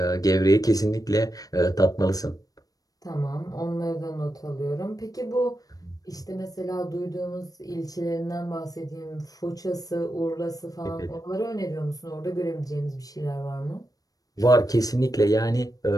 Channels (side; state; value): right; late; 0.18 ms